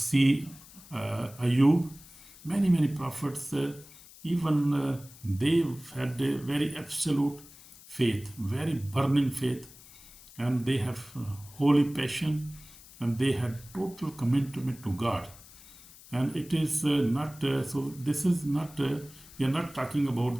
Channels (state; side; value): noise; left; hiss, 21 dB below the sound